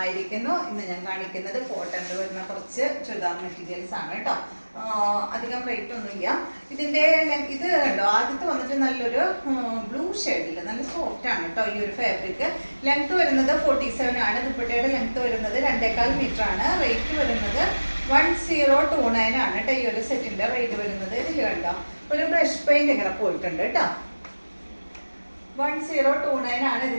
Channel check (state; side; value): inverted; both; correlation -1.00